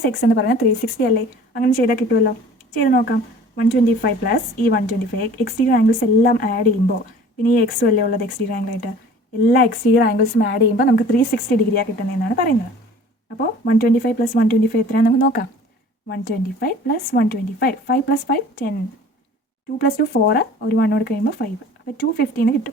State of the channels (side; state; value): both; normal; correlation 0.47